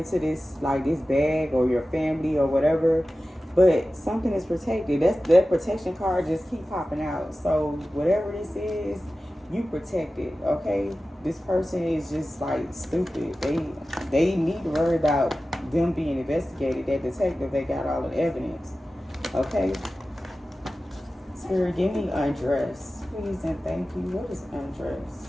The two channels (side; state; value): both; normal; correlation 0.95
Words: this, like this bag or your family or whatever. But something is protected. That protection card just keep popping out. So whatever this is, you protected, okay? This person is just like stupid. They need to worry about them being investigated. That detective, they got all the evidence, okay? Spirit, give me undress, please and thank you. What is undress?